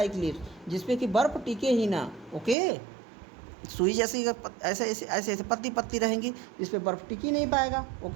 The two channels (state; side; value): drops out; left; at 2.6 s